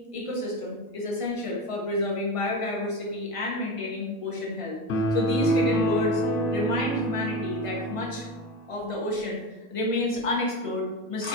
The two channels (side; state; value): right; late; 1.5 ms